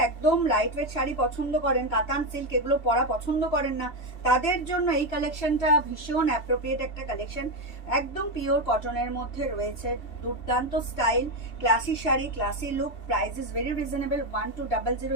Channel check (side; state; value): right; late; 3.0 ms